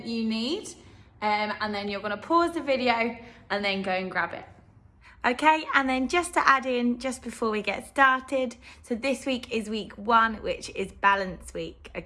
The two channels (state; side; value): identical; both; correlation 1.00